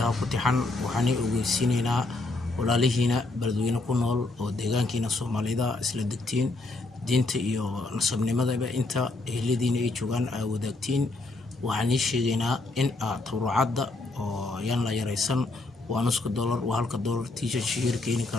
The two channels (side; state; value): right; quieter; 3.1 dB